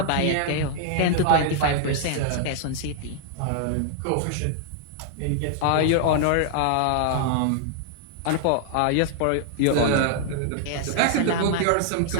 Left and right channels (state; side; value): different; both; correlation -0.01